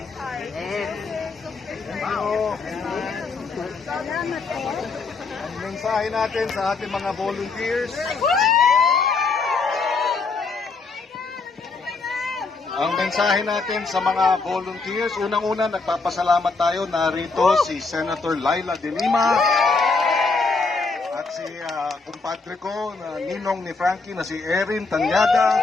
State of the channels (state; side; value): quieter; right; 4.2 dB